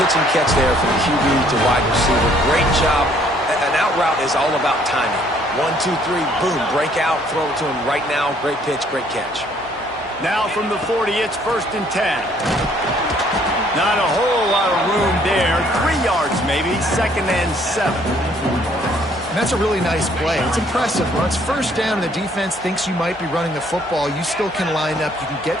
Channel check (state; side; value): normal; both; correlation 0.63